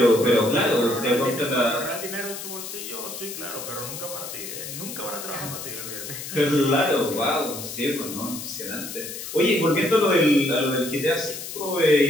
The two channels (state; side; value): noise; left; hiss, 9 dB below the sound